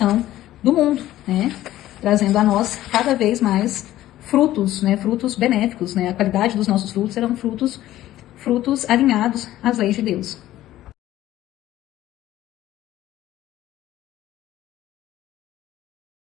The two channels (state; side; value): quieter; right; 14.3 dB